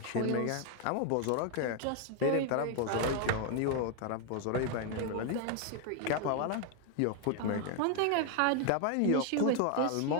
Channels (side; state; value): both; different; correlation 0.01